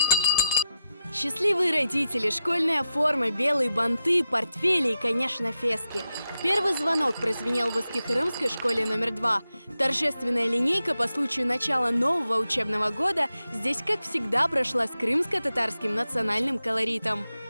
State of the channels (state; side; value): inverted; both; correlation -0.89